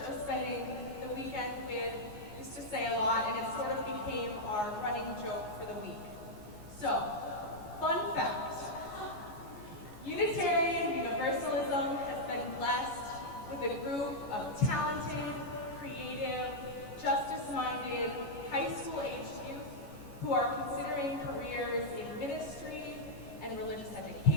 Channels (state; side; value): late; right; 14 ms